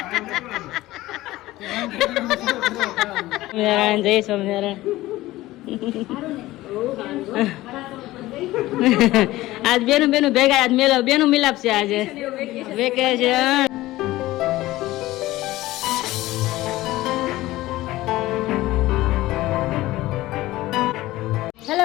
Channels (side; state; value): right; quieter; 17.3 dB